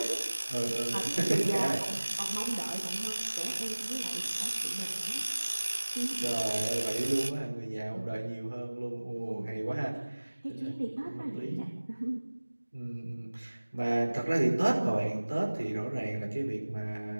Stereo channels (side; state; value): both; inverted; correlation -1.00